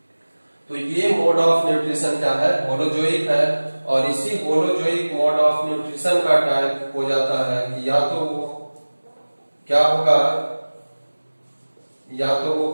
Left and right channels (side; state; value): both; inverted; correlation -1.00